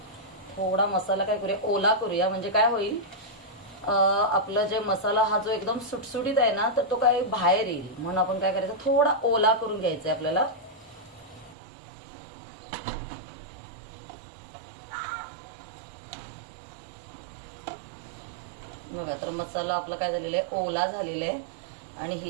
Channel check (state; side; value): drops out; left; at 11.6 s